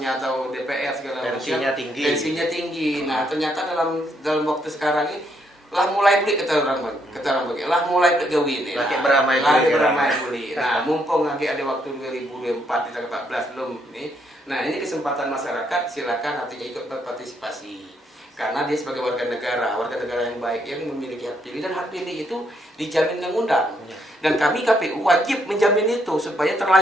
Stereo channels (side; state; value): both; normal; correlation 0.74